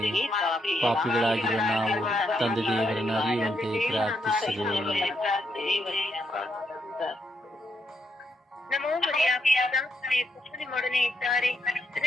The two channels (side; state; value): both; normal; correlation 0.79